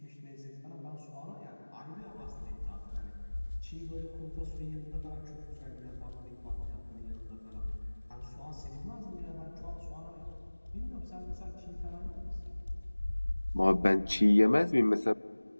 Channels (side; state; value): both; inverted; correlation -1.00